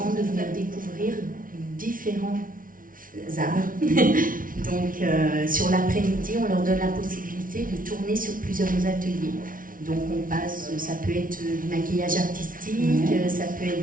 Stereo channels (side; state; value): left; late; 0.39 ms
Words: de venir découvrir différents arts. Donc, sur l'après-midi, on leur donne la possibilité de tourner sur plusieurs ateliers. Donc, on passe, ça peut être du maquillage artistique, ça peut être